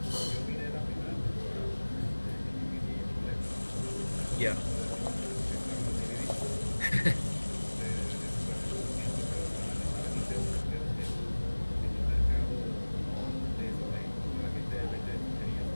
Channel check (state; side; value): inverted; both; correlation -1.00